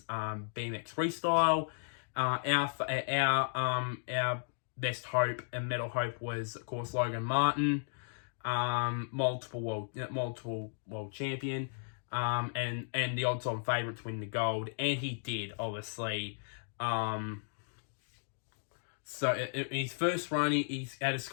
BMX freestyle. Our best hope and medal hope was, of course, Logan Martin, multiple world champion, and the odds-on favourite to win the gold, and he did, obviously. So in his first run, he had a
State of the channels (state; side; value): silent; right; digital silence